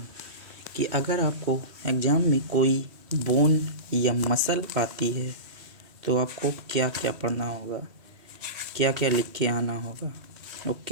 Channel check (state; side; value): late; left; 3.1 ms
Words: कि अगर आपको एग्ज़ाम में कोई बोन या मसल आती है तो आपको क्या क्या पढ़ना होगा, क्या क्या लिख के आना होगा।